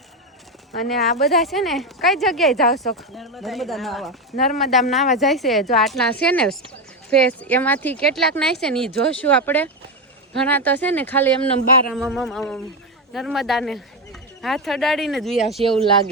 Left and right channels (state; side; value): normal; both; correlation 0.11